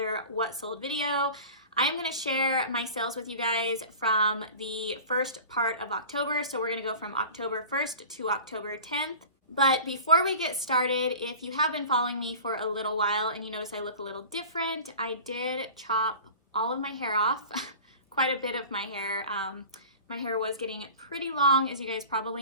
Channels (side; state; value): both; inverted; correlation -0.39